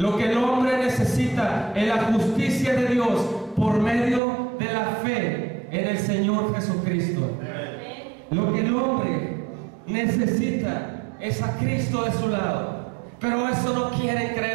que el hombre necesita es la justicia de Dios por medio de la fe en el Señor Jesucristo. Lo que el hombre necesita es a Cristo de su lado. Pero eso no quieren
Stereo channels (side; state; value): left; drops out; at 4.2 s